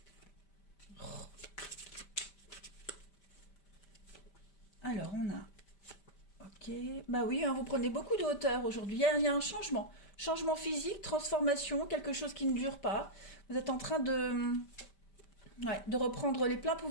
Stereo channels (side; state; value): right; late; 5.1 ms